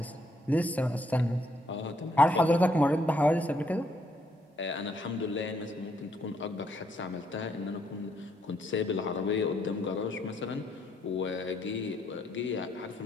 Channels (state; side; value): normal; both; correlation 0.72